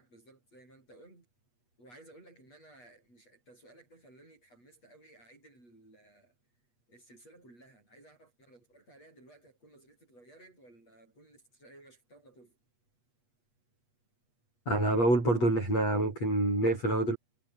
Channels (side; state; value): right; late; 8.3 ms